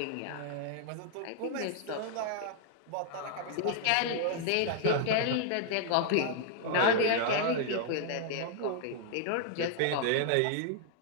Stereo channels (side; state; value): both; different; correlation -0.01